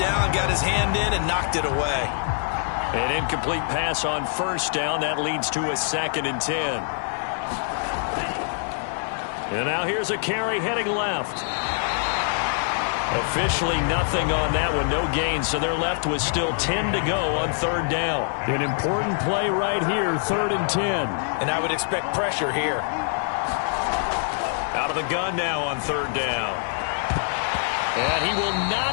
Got his hand in and knocked it away. An incomplete pass on first down. That leads to a 2nd and 10. And now here's a carry heading left. Officially nothing on that one, no gain, so they're left with still 10 to go on third down. An important play right here, 3rd and 10. And I would expect pressure here. Out of the gun now on third down. And he will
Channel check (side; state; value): right; silent; digital silence